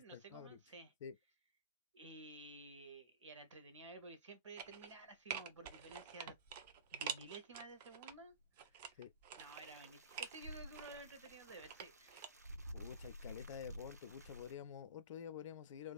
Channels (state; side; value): inverted; both; correlation -0.32